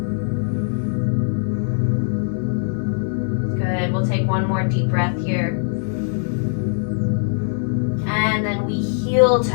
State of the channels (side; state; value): right; silent; 57 dB below the other